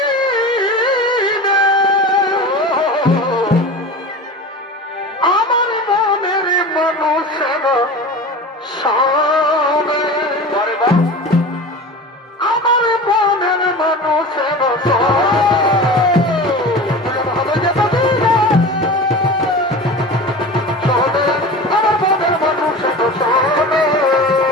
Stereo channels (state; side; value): normal; both; correlation 0.33